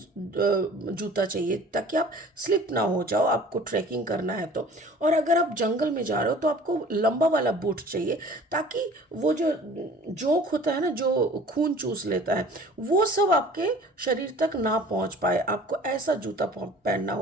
जूता चाहिए ताकि आप स्लिप ना हो जाओ, आपको ट्रैकिंग करना है तो। और अगर आप जंगल में जा रहे हो तो आपको लंबा वाला बूट चाहिए ताकि वो जो जोंक होता है ना, जो खून चूस लेता है, वो सब आपके शरीर तक ना पहुंच पाए। आपको ऐसा जूता पहनना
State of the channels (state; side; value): normal; both; correlation 0.47